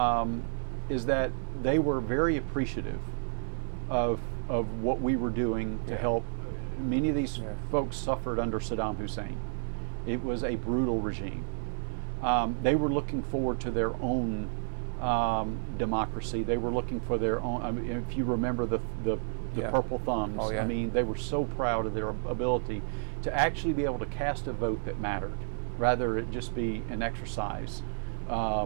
is that they were very appreciative of of what we were doing to help. Many of these Yeah. folks suffered under Saddam Hussein. It was a brutal regime. They were looking forward to their own democracy. They were looking for their own. I mean, if you remember the Yeah. purple thumbs, Oh, yeah. I mean, they were so proud of their ability to actually be able to cast a vote that mattered, rather it just be an exercise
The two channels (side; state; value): left; silent; digital silence